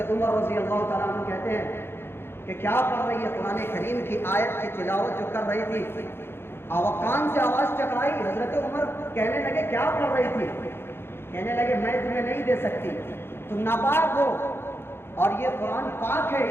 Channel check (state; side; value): late; right; 0.11 ms